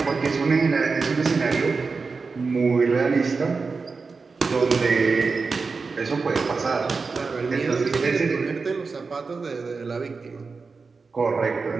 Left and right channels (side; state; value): left; quieter; 4.5 dB